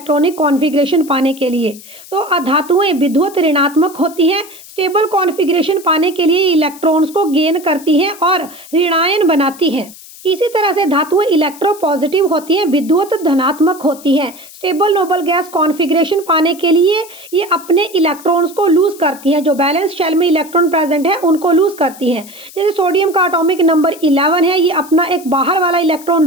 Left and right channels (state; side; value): noise; left; hiss, 19 dB below the sound